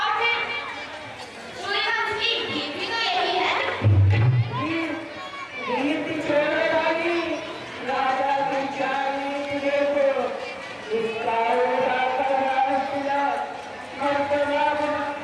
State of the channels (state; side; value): identical; both; correlation 1.00